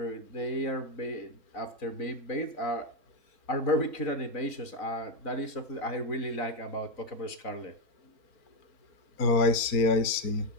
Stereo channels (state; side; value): late; right; 4.3 ms